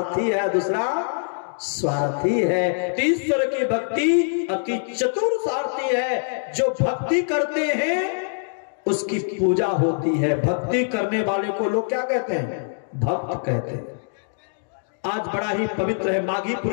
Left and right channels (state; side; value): silent; right; digital silence